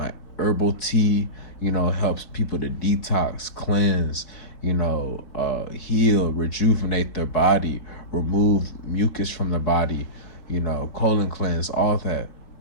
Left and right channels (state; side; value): late; right; 4.5 ms